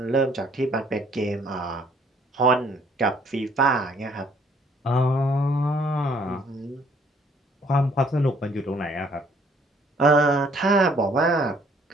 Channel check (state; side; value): normal; both; correlation 0.62